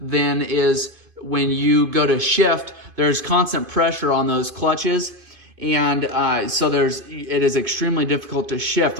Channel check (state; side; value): late; left; 2.5 ms